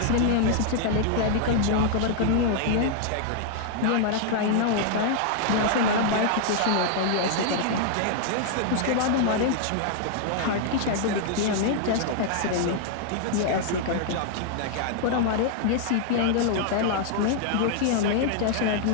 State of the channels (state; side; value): different; both; correlation 0.00